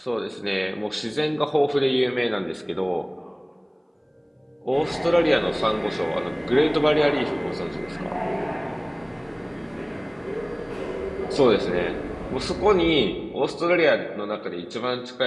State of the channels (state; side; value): identical; both; correlation 1.00